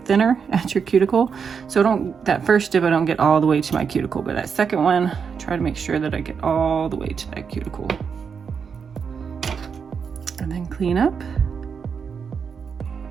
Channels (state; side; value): quieter; left; 6.3 dB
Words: at your cuticle. So that first dip, I don't get all the way to my cuticle, but that second one, try to make sure that I get all the way to that cuticle. And then clean up.